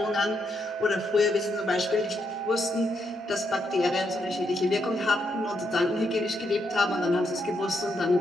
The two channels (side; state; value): both; normal; correlation 0.79